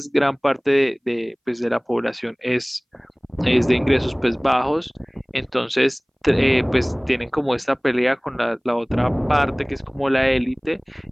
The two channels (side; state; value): both; identical; correlation 1.00